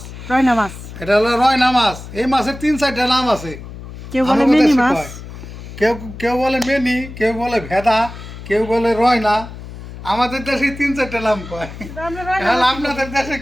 রয়না মাছ। এটা হলো রয়না মাছ। এই মাছের 3-4টা নাম আছে। কেউ বলে আমাদের মিনি দেশে মাছ, কয়। কেউ কেউ বলে মেনি, কেউ বলে ভেদা, কেউ বলে রয়না। আমাদের দেশে 3-4টা নাম কয়। আমরা রয়না তাহলে মাছ আপনাদের দেশে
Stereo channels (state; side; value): noise; left; hum, 13 dB below the sound